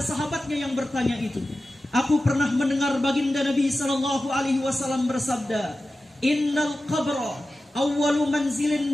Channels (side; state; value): both; normal; correlation 0.94